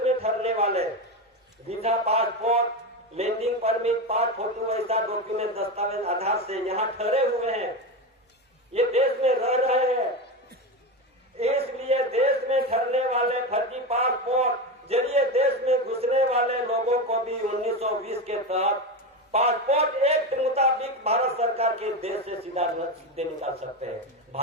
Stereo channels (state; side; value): normal; both; correlation 0.18